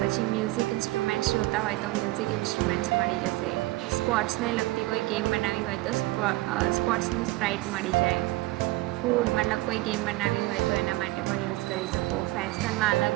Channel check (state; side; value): quieter; left; 19.8 dB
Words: પછી મ્યુઝિક ઇન્સ્ટ્રુમેન્ટ્સ જોતા હોય તો મ્યુઝિક ઇન્સ્ટ્રુમેન્ટ્સ મળી જશે. સ્પોર્ટ્સને લગતી કોઈ ગેમ બનાવવી હોય તો સ્પોર્ટ્સનું સ્પ્રાઇટ મળી જાય. ફૂડ મતલબ કોઈ ગેમ બનાવવી હોય તો એના માટે પણ યુઝ કરી શકો. ફેશનમાં